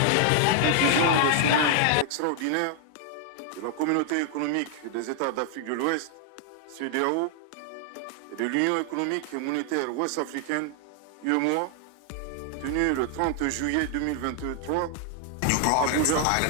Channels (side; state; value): both; different; correlation 0.00